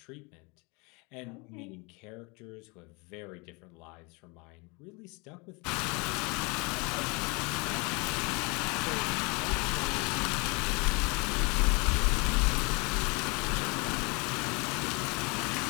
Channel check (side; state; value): right; quieter; 29.5 dB